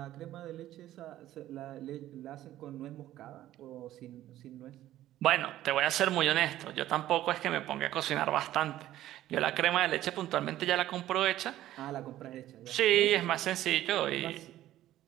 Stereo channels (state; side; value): quieter; left; 13.8 dB